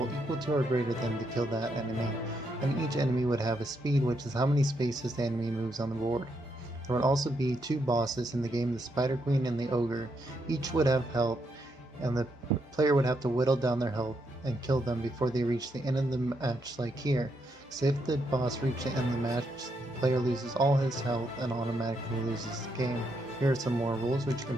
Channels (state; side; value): normal; both; correlation 0.79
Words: equal to or greater than to kill that enemy. And each enemy would have a speed, which is how many spaces the enemy moves on the board. There would also be two bosses in the game, the Spider Queen and the Ogre. Each would have health, and the player would have to whittle down their health and kill them before they reach the end of the match, like here. So if the boss reaches the end of the match, the player loses all his health and automatically loses the game. Here are some more rules which you can